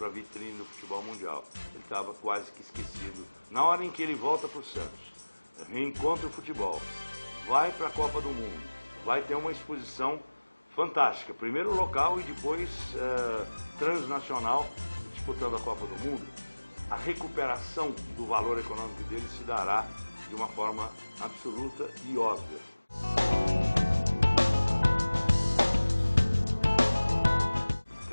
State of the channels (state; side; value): inverted; both; correlation -1.00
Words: a vitrine do futebol mundial. Ele estava quase que esquecido. Na hora em que ele volta para o Santos, reencontra o futebol, vai para a Copa do Mundo, vai ter uma exposição fantástica, primeiro local e depois transnacional, disputando a Copa do Mundo, a recuperação do valor econômico dele se dará de uma forma absoluta e óbvia.